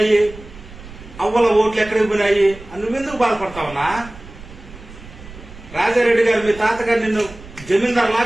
అవ్వల ఓట్లు ఎక్కడికి పోయినాయి నువ్వెందుకు బాధపడతావన్నా? రాజారెడ్డి గారు మీ తాతగారు నిన్ను జమీందార్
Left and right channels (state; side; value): noise; right; rumble, 17 dB below the sound